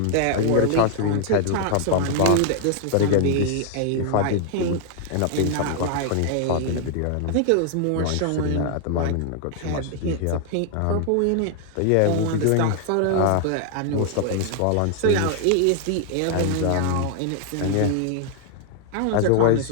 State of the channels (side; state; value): both; different; correlation 0.00